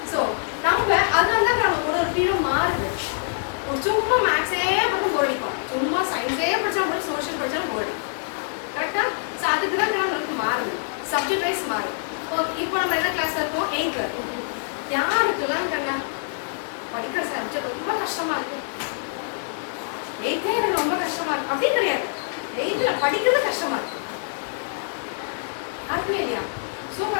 ஸோ நம்ம அதனால தான் நம்ம ஒரு ஃபீலும் மாறுது. ஒரு சும்மா மேக்ஸே மட்டும் போடிப்போம், சும்மா சயின்ஸே படிச்சா கூட சோஷியல் படிச்சாலும் போடி. கரெக்டா? ஸோ அதுக்கு தான் நம்மளுக்கு மாறுது, சப்ஜெக்ட் வைஸ் மாறும். இப்போ நம்ம என்ன கிளாஸ்ல இருக்கோம்? 8th இருக்கோம். யாருக்கெல்லாம் கண்ணா படிக்கிற சப்ஜெக்ட் ரொம்ப கஷ்டமா இருக்கு, 8th எனக்கு ரொம்ப கஷ்டமா இருக்கு அப்படின்னு கிடையாது. 8th படிக்கிறது கஷ்டமா இருக்கு. அதுமே இல்லையா?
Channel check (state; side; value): silent; right; digital silence